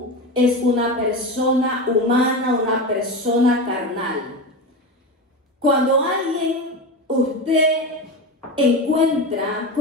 es una persona humana, una persona carnal. Cuando usted encuentra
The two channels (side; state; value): both; normal; correlation 0.22